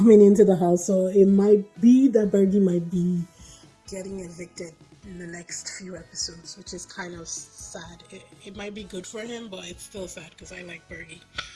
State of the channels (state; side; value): identical; both; correlation 1.00